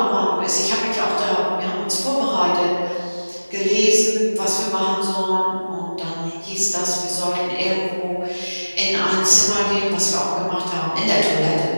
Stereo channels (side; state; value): both; inverted; correlation -1.00